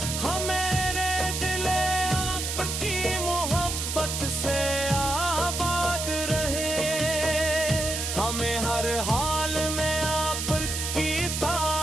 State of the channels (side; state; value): right; noise; hiss, 3 dB below the sound